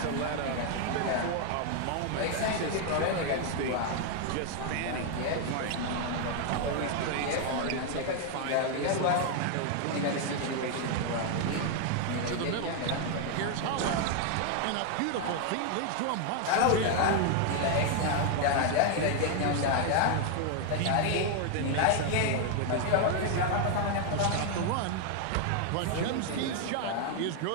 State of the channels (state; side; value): different; both; correlation 0.00